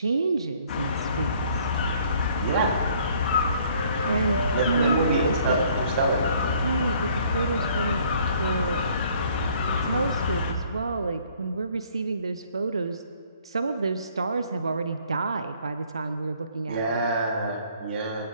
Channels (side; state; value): both; inverted; correlation -0.60